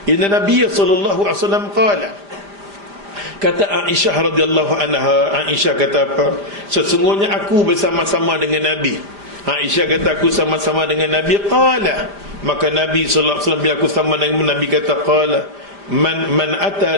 inna Nabiy sallallahu alaihi wasallam qala, kata Aisyah radhiyallahu anha, Aisyah kata apa? Sesungguhnya aku bersama-sama dengan Nabi. Aisyah kata aku sama-sama dengan Nabi. Qala, maka Nabi sallallahu alaihi wasallam bila aku sama dengan Nabi kata qala man ata,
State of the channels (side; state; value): left; late; 5.0 ms